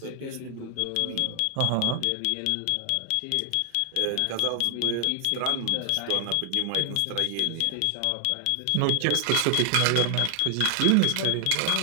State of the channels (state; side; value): different; both; correlation 0.00